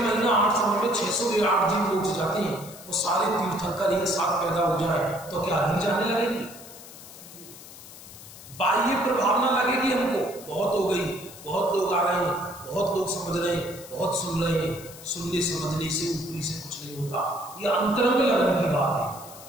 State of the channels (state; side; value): noise; left; hiss, 17 dB below the sound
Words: 8 समय में 608 जीव मोक्ष जाते हैं, वो सारे तीर्थंकर एक साथ पैदा हो जाए तो क्या अधिक जाने लगेंगे? बाह्य प्रभाव ना लगेगी हमको, बहुत हो गई, बहुत लोग आ रहे हैं, बहुत लोग समझ रहे हैं, बहुत सुन रहे हैं। सुनने समझने से ऊपरी से कुछ नहीं होता। यह अंतरंग लगन की बात